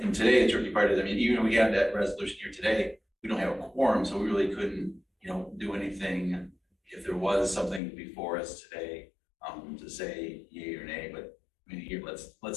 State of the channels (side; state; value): right; drops out; at 7.8 s